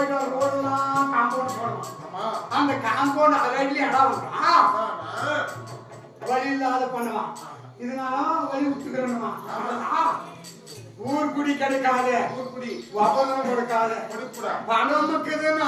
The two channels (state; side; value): identical; both; correlation 1.00